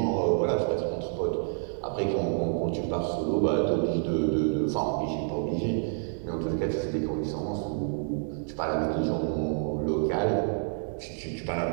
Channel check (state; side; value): silent; left; 59 dB below the other